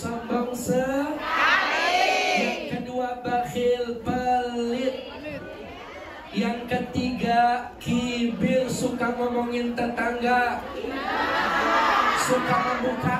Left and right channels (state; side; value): identical; both; correlation 1.00